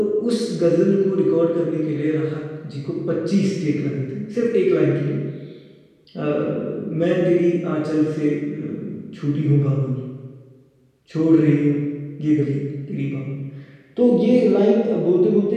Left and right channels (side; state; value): both; identical; correlation 1.00